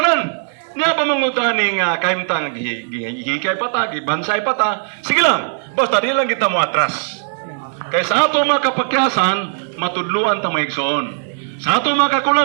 Niya pa mangutaning kaimtang hikay pata, bansay pata. Sige lang. Basta di lang kita mo atras. Kaya sa ato makapakyasan, matudluan ta maigsoon. Sa ato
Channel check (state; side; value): silent; left; 65 dB below the other